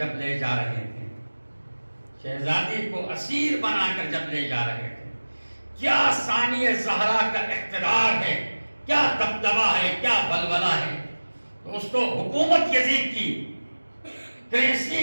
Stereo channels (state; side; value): inverted; both; correlation -1.00